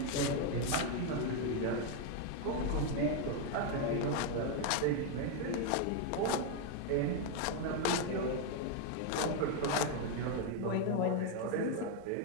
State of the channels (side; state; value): both; different; correlation 0.01